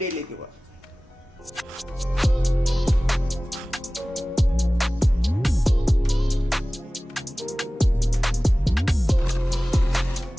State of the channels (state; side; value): normal; both; correlation 0.98